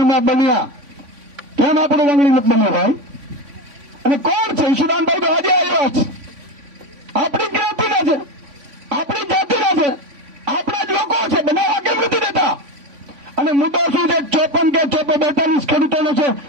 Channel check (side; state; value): left; late; 3.5 ms